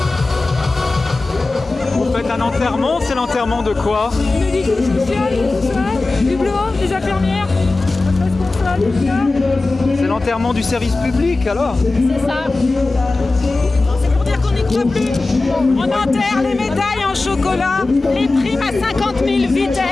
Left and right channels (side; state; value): right; quieter; 3.3 dB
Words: Un enterrement, c'est l'enterrement de quoi? Médico-social, tout ça, du boulot, des infirmières, responsable, tout ça. C'est l'enterrement du service public alors? C'est ça. C'est pour dire qu'on n'y croit plus. On enterre les médailles en chocolat, les primes à 50 000